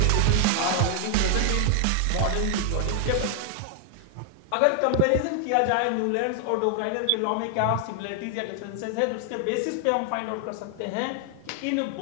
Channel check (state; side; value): different; both; correlation 0.00